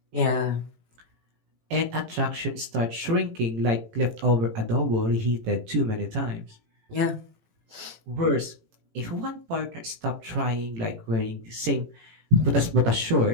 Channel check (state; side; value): late; left; 18 ms